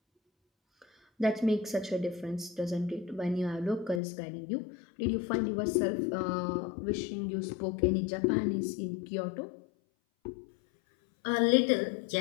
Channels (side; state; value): right; drops out; at 4.0 s